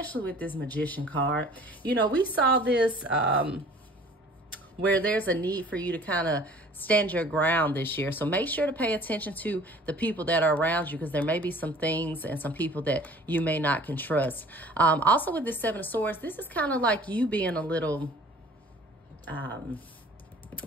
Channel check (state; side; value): normal; both; correlation 0.49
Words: with this Magician card. You know, we saw this where there's a need for you to kind of stand your ground this year. So make sure to pay attention to the people that are around you, because there may be some things and some people that you may not can trust. Also with this Seven of Swords, this is kind of like you being a little kind